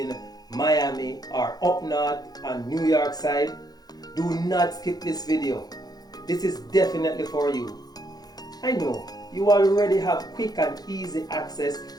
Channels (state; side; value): late; right; 0.19 ms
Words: Miami or up north on New York side, do not skip this video. This is definitely for you. I know you already have quick and easy access